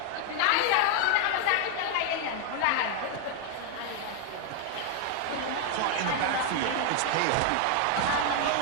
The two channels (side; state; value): both; different; correlation 0.00